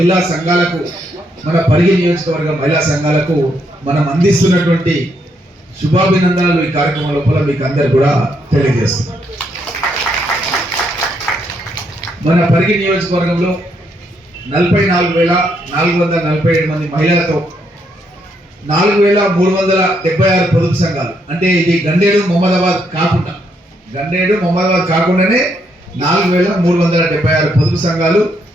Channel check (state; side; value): normal; both; correlation 0.75